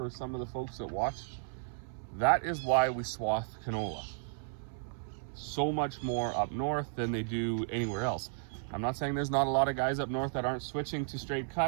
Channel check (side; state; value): left; silent; 55 dB below the other